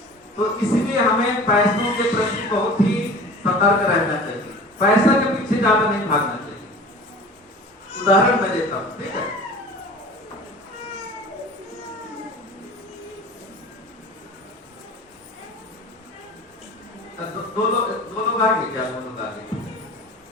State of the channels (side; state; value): both; normal; correlation 0.41